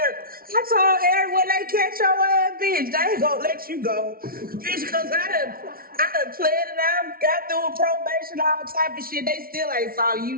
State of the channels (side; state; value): left; late; 0.43 ms